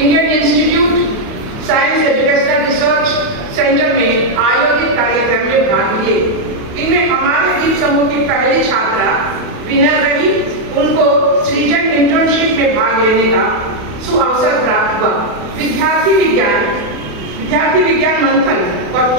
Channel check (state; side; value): late; left; 28 ms